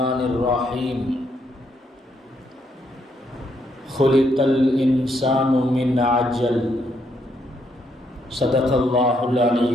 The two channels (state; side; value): normal; both; correlation 0.75